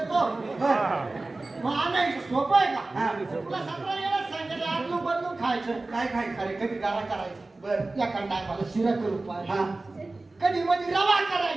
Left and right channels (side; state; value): left; quieter; 3.2 dB